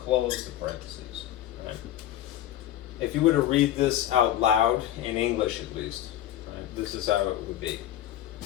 the parentheses. Right? If you were to read this out loud, in English at least, right, this is how it would be.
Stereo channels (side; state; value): right; quieter; 12.3 dB